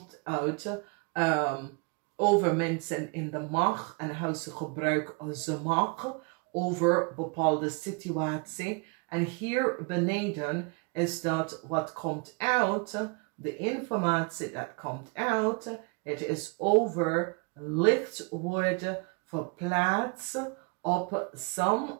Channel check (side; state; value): left; quieter; 32.8 dB